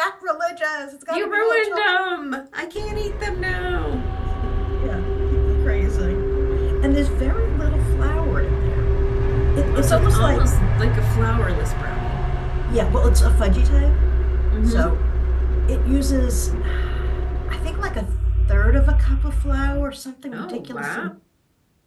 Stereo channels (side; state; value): both; identical; correlation 1.00